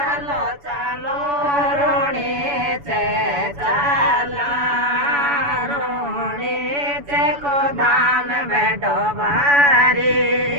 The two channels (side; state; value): left; late; 7.0 ms